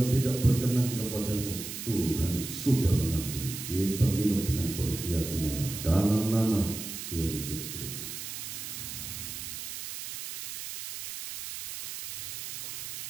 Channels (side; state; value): right; noise; hiss, 7 dB below the sound